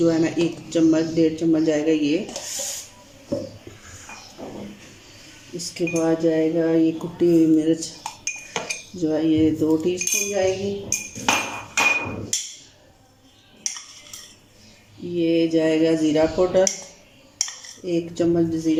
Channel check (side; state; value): both; identical; correlation 1.00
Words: है ना 1 चम्मच 1.5 चम्मच जाएगा ये। इसके बाद जाएगा ये कुटी हुई मिर्च जो है ये 2 टीस्पून जाएगी। ये जाएगा ज़ीरा पाउडर, 1 चम्मच